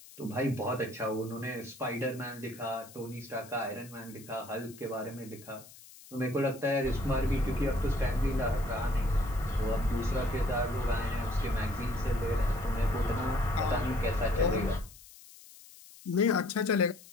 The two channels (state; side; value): noise; left; hiss, 20 dB below the sound